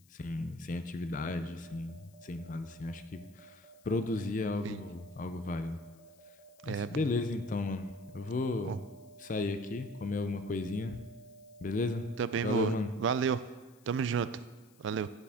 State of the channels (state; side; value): noise; left; hiss, 29 dB below the sound